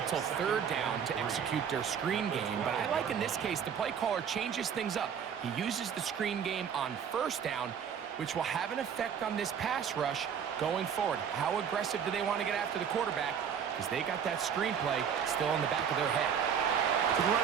till 3rd down to execute their screen game, but I like in this case the play caller changes things up. He uses the screen game on 1st down, which will have an effect on this pass rush going forward. How aggressive do they want to get after the quarterback? Because they got that screen play still in the back of their head. To the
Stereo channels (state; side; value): quieter; left; 7.7 dB